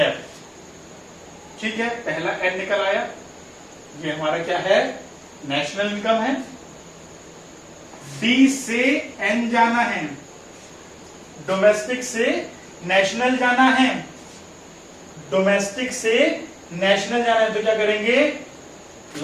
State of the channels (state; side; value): identical; both; correlation 1.00